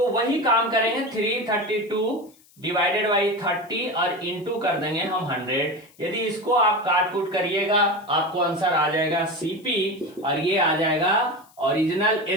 वही काम करेंगे, 332 डिवाइडेड बाई 30 और इंटू कर देंगे हम 100। यदि इसको आप काट कूट करिएगा आपको आंसर आ जाएगा सीपी, और ये आ जाएगा ओरिजिनल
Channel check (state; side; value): noise; left; hiss, 29 dB below the sound